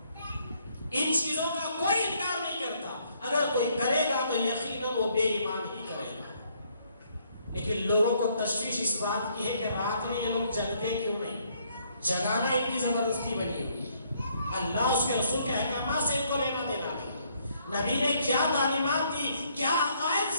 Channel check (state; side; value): inverted; both; correlation -0.69